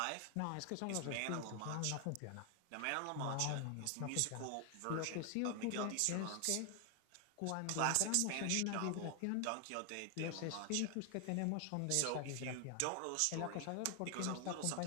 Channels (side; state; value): both; different; correlation 0.00